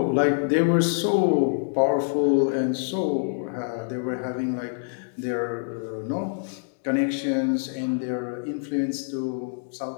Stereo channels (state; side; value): silent; right; digital silence